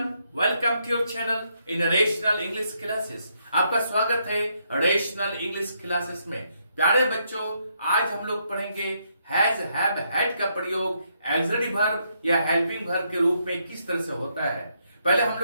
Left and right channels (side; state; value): both; inverted; correlation -0.76